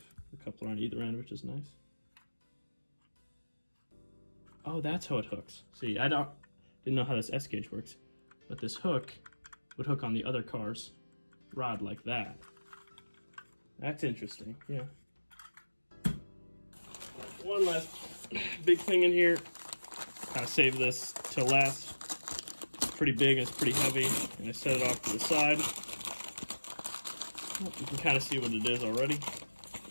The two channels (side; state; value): both; inverted; correlation -1.00